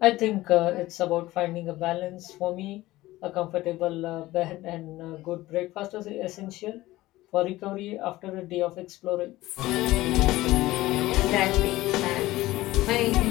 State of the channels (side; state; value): right; quieter; 17.5 dB